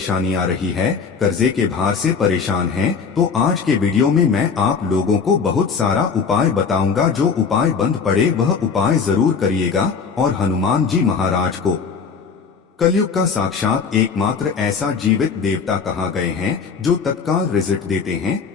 आ रही है, कर्जे के भार से परेशान हैं, तो आज के वीडियो में मैं आप लोगों को बहुत सारा उपाय बताऊंगा। जो उपाय बंद पड़े वह उपाय जरूर करिएगा। और हनुमान जी महाराज को कलयुग का साक्षात एकमात्र ऐसा जीवित देवता कहा गए हैं जो तत्काल रिजल्ट देते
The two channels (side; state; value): right; quieter; 5.7 dB